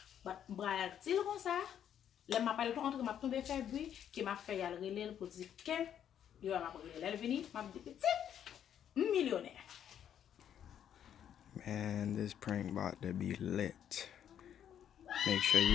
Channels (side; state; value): right; quieter; 9.6 dB